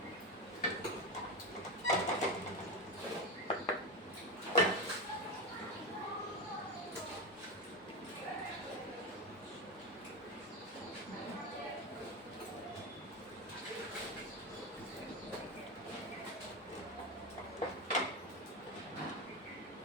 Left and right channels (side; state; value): both; normal; correlation 0.15